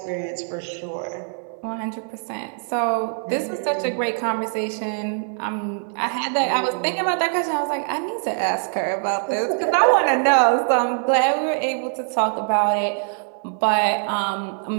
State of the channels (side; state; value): left; silent; 60 dB below the other